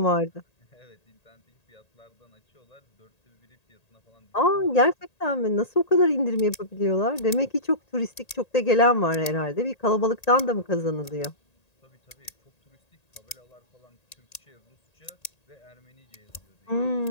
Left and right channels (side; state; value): right; late; 1.8 ms